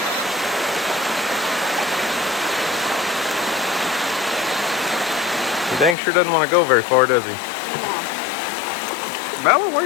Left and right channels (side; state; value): right; drops out; at 6.0 s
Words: He dang sure doesn't want to go very far, does he? Bella, where